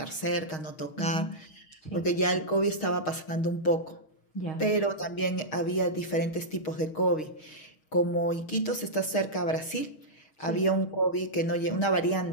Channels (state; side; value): late; right; 6.4 ms